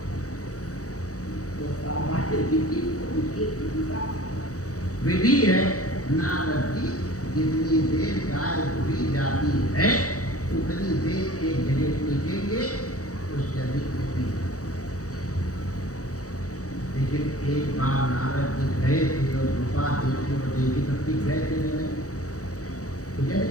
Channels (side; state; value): right; late; 0.66 ms